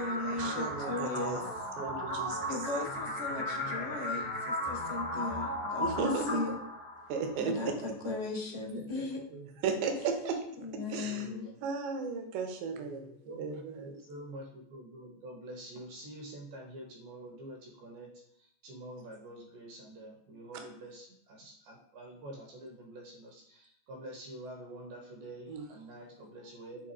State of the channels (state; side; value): late; left; 14 ms